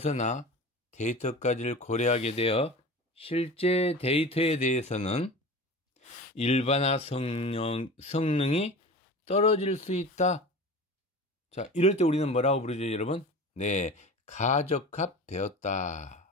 데이터까지를 고려하게 되어 실제 데이터에 대해서는 일반화 성능이 떨어질 수 있다. 자, 이럴 때 우리는 뭐라고 부르죠, 여러분? 네, 가적합되었다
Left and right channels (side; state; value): both; normal; correlation 0.34